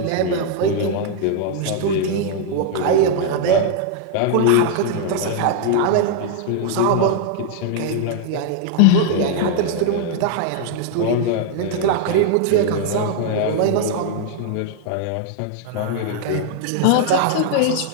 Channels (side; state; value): both; different; correlation 0.00